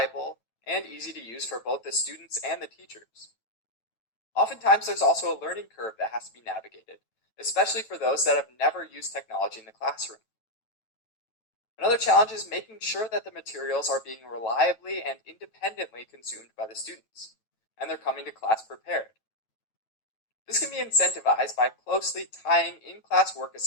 and easy to use for both the students and the teachers. Oftentimes, there's also a learning curve that has to be navigated, especially for those that have never used technology in the classroom. Another challenge is making sure that the materials are being reliably and independently consumed by the students, and they're coming to class prepared. This can be incentivized by closely tying in-class work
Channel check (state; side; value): late; right; 9.1 ms